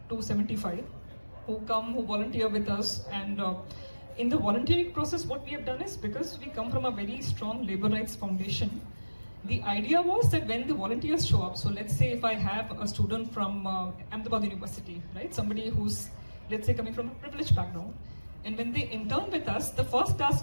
to 75 who volunteer with us. And in the volunteering process, what we have done is, because we come from a very strong labor rights foundation, the idea was that when the volunteers show up, so let's say if I have a student from Ahmedabad University, right, somebody who's, let's say, coming from a privileged background, and when they intern with us, the first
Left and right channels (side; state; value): both; inverted; correlation -1.00